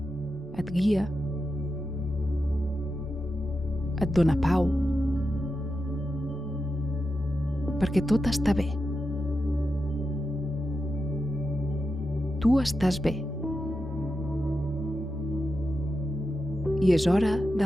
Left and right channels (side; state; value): both; normal; correlation 0.89